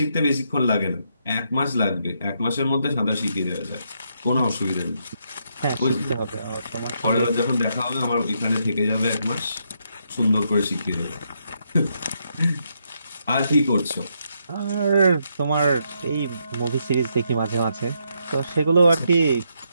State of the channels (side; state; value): both; inverted; correlation -0.78